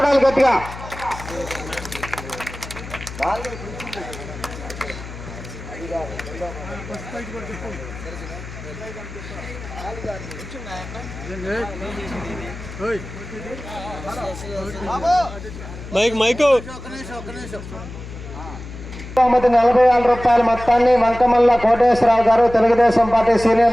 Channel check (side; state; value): left; noise; hum, 12 dB below the sound